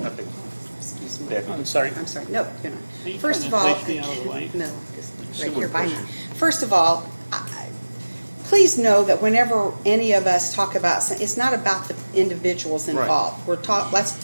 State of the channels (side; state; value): both; inverted; correlation -1.00